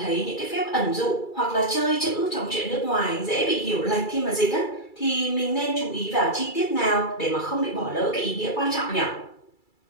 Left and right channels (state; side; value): late; right; 2.3 ms